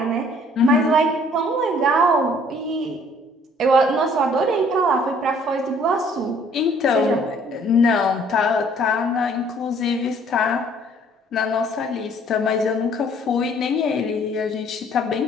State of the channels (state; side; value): normal; both; correlation 0.58